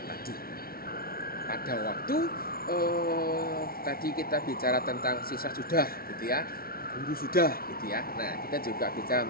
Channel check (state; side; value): late; right; 0.44 ms